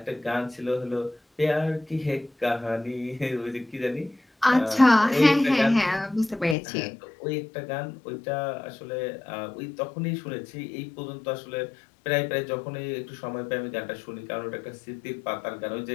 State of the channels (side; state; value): right; drops out; at 6.6 s